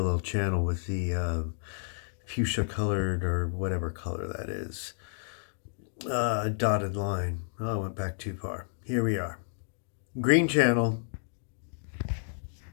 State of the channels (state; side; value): silent; right; digital silence